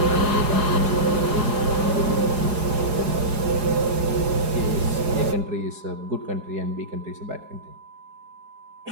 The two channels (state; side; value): late; left; 4.8 ms